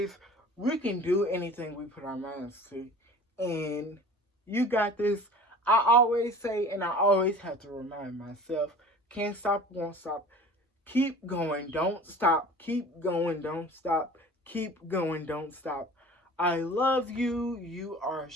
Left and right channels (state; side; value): normal; both; correlation 0.42